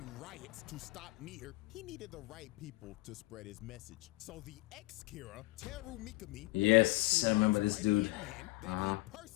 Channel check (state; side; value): quieter; right; 22.2 dB